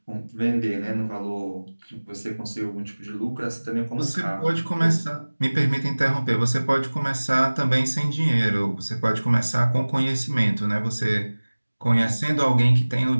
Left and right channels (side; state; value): both; inverted; correlation -1.00